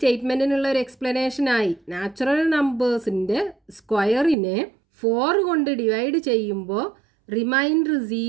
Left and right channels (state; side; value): drops out; left; at 4.4 s